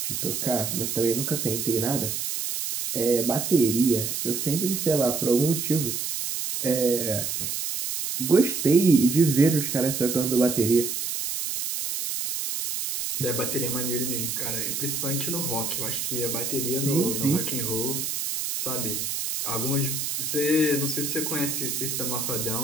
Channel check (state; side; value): noise; right; hiss, 3 dB below the sound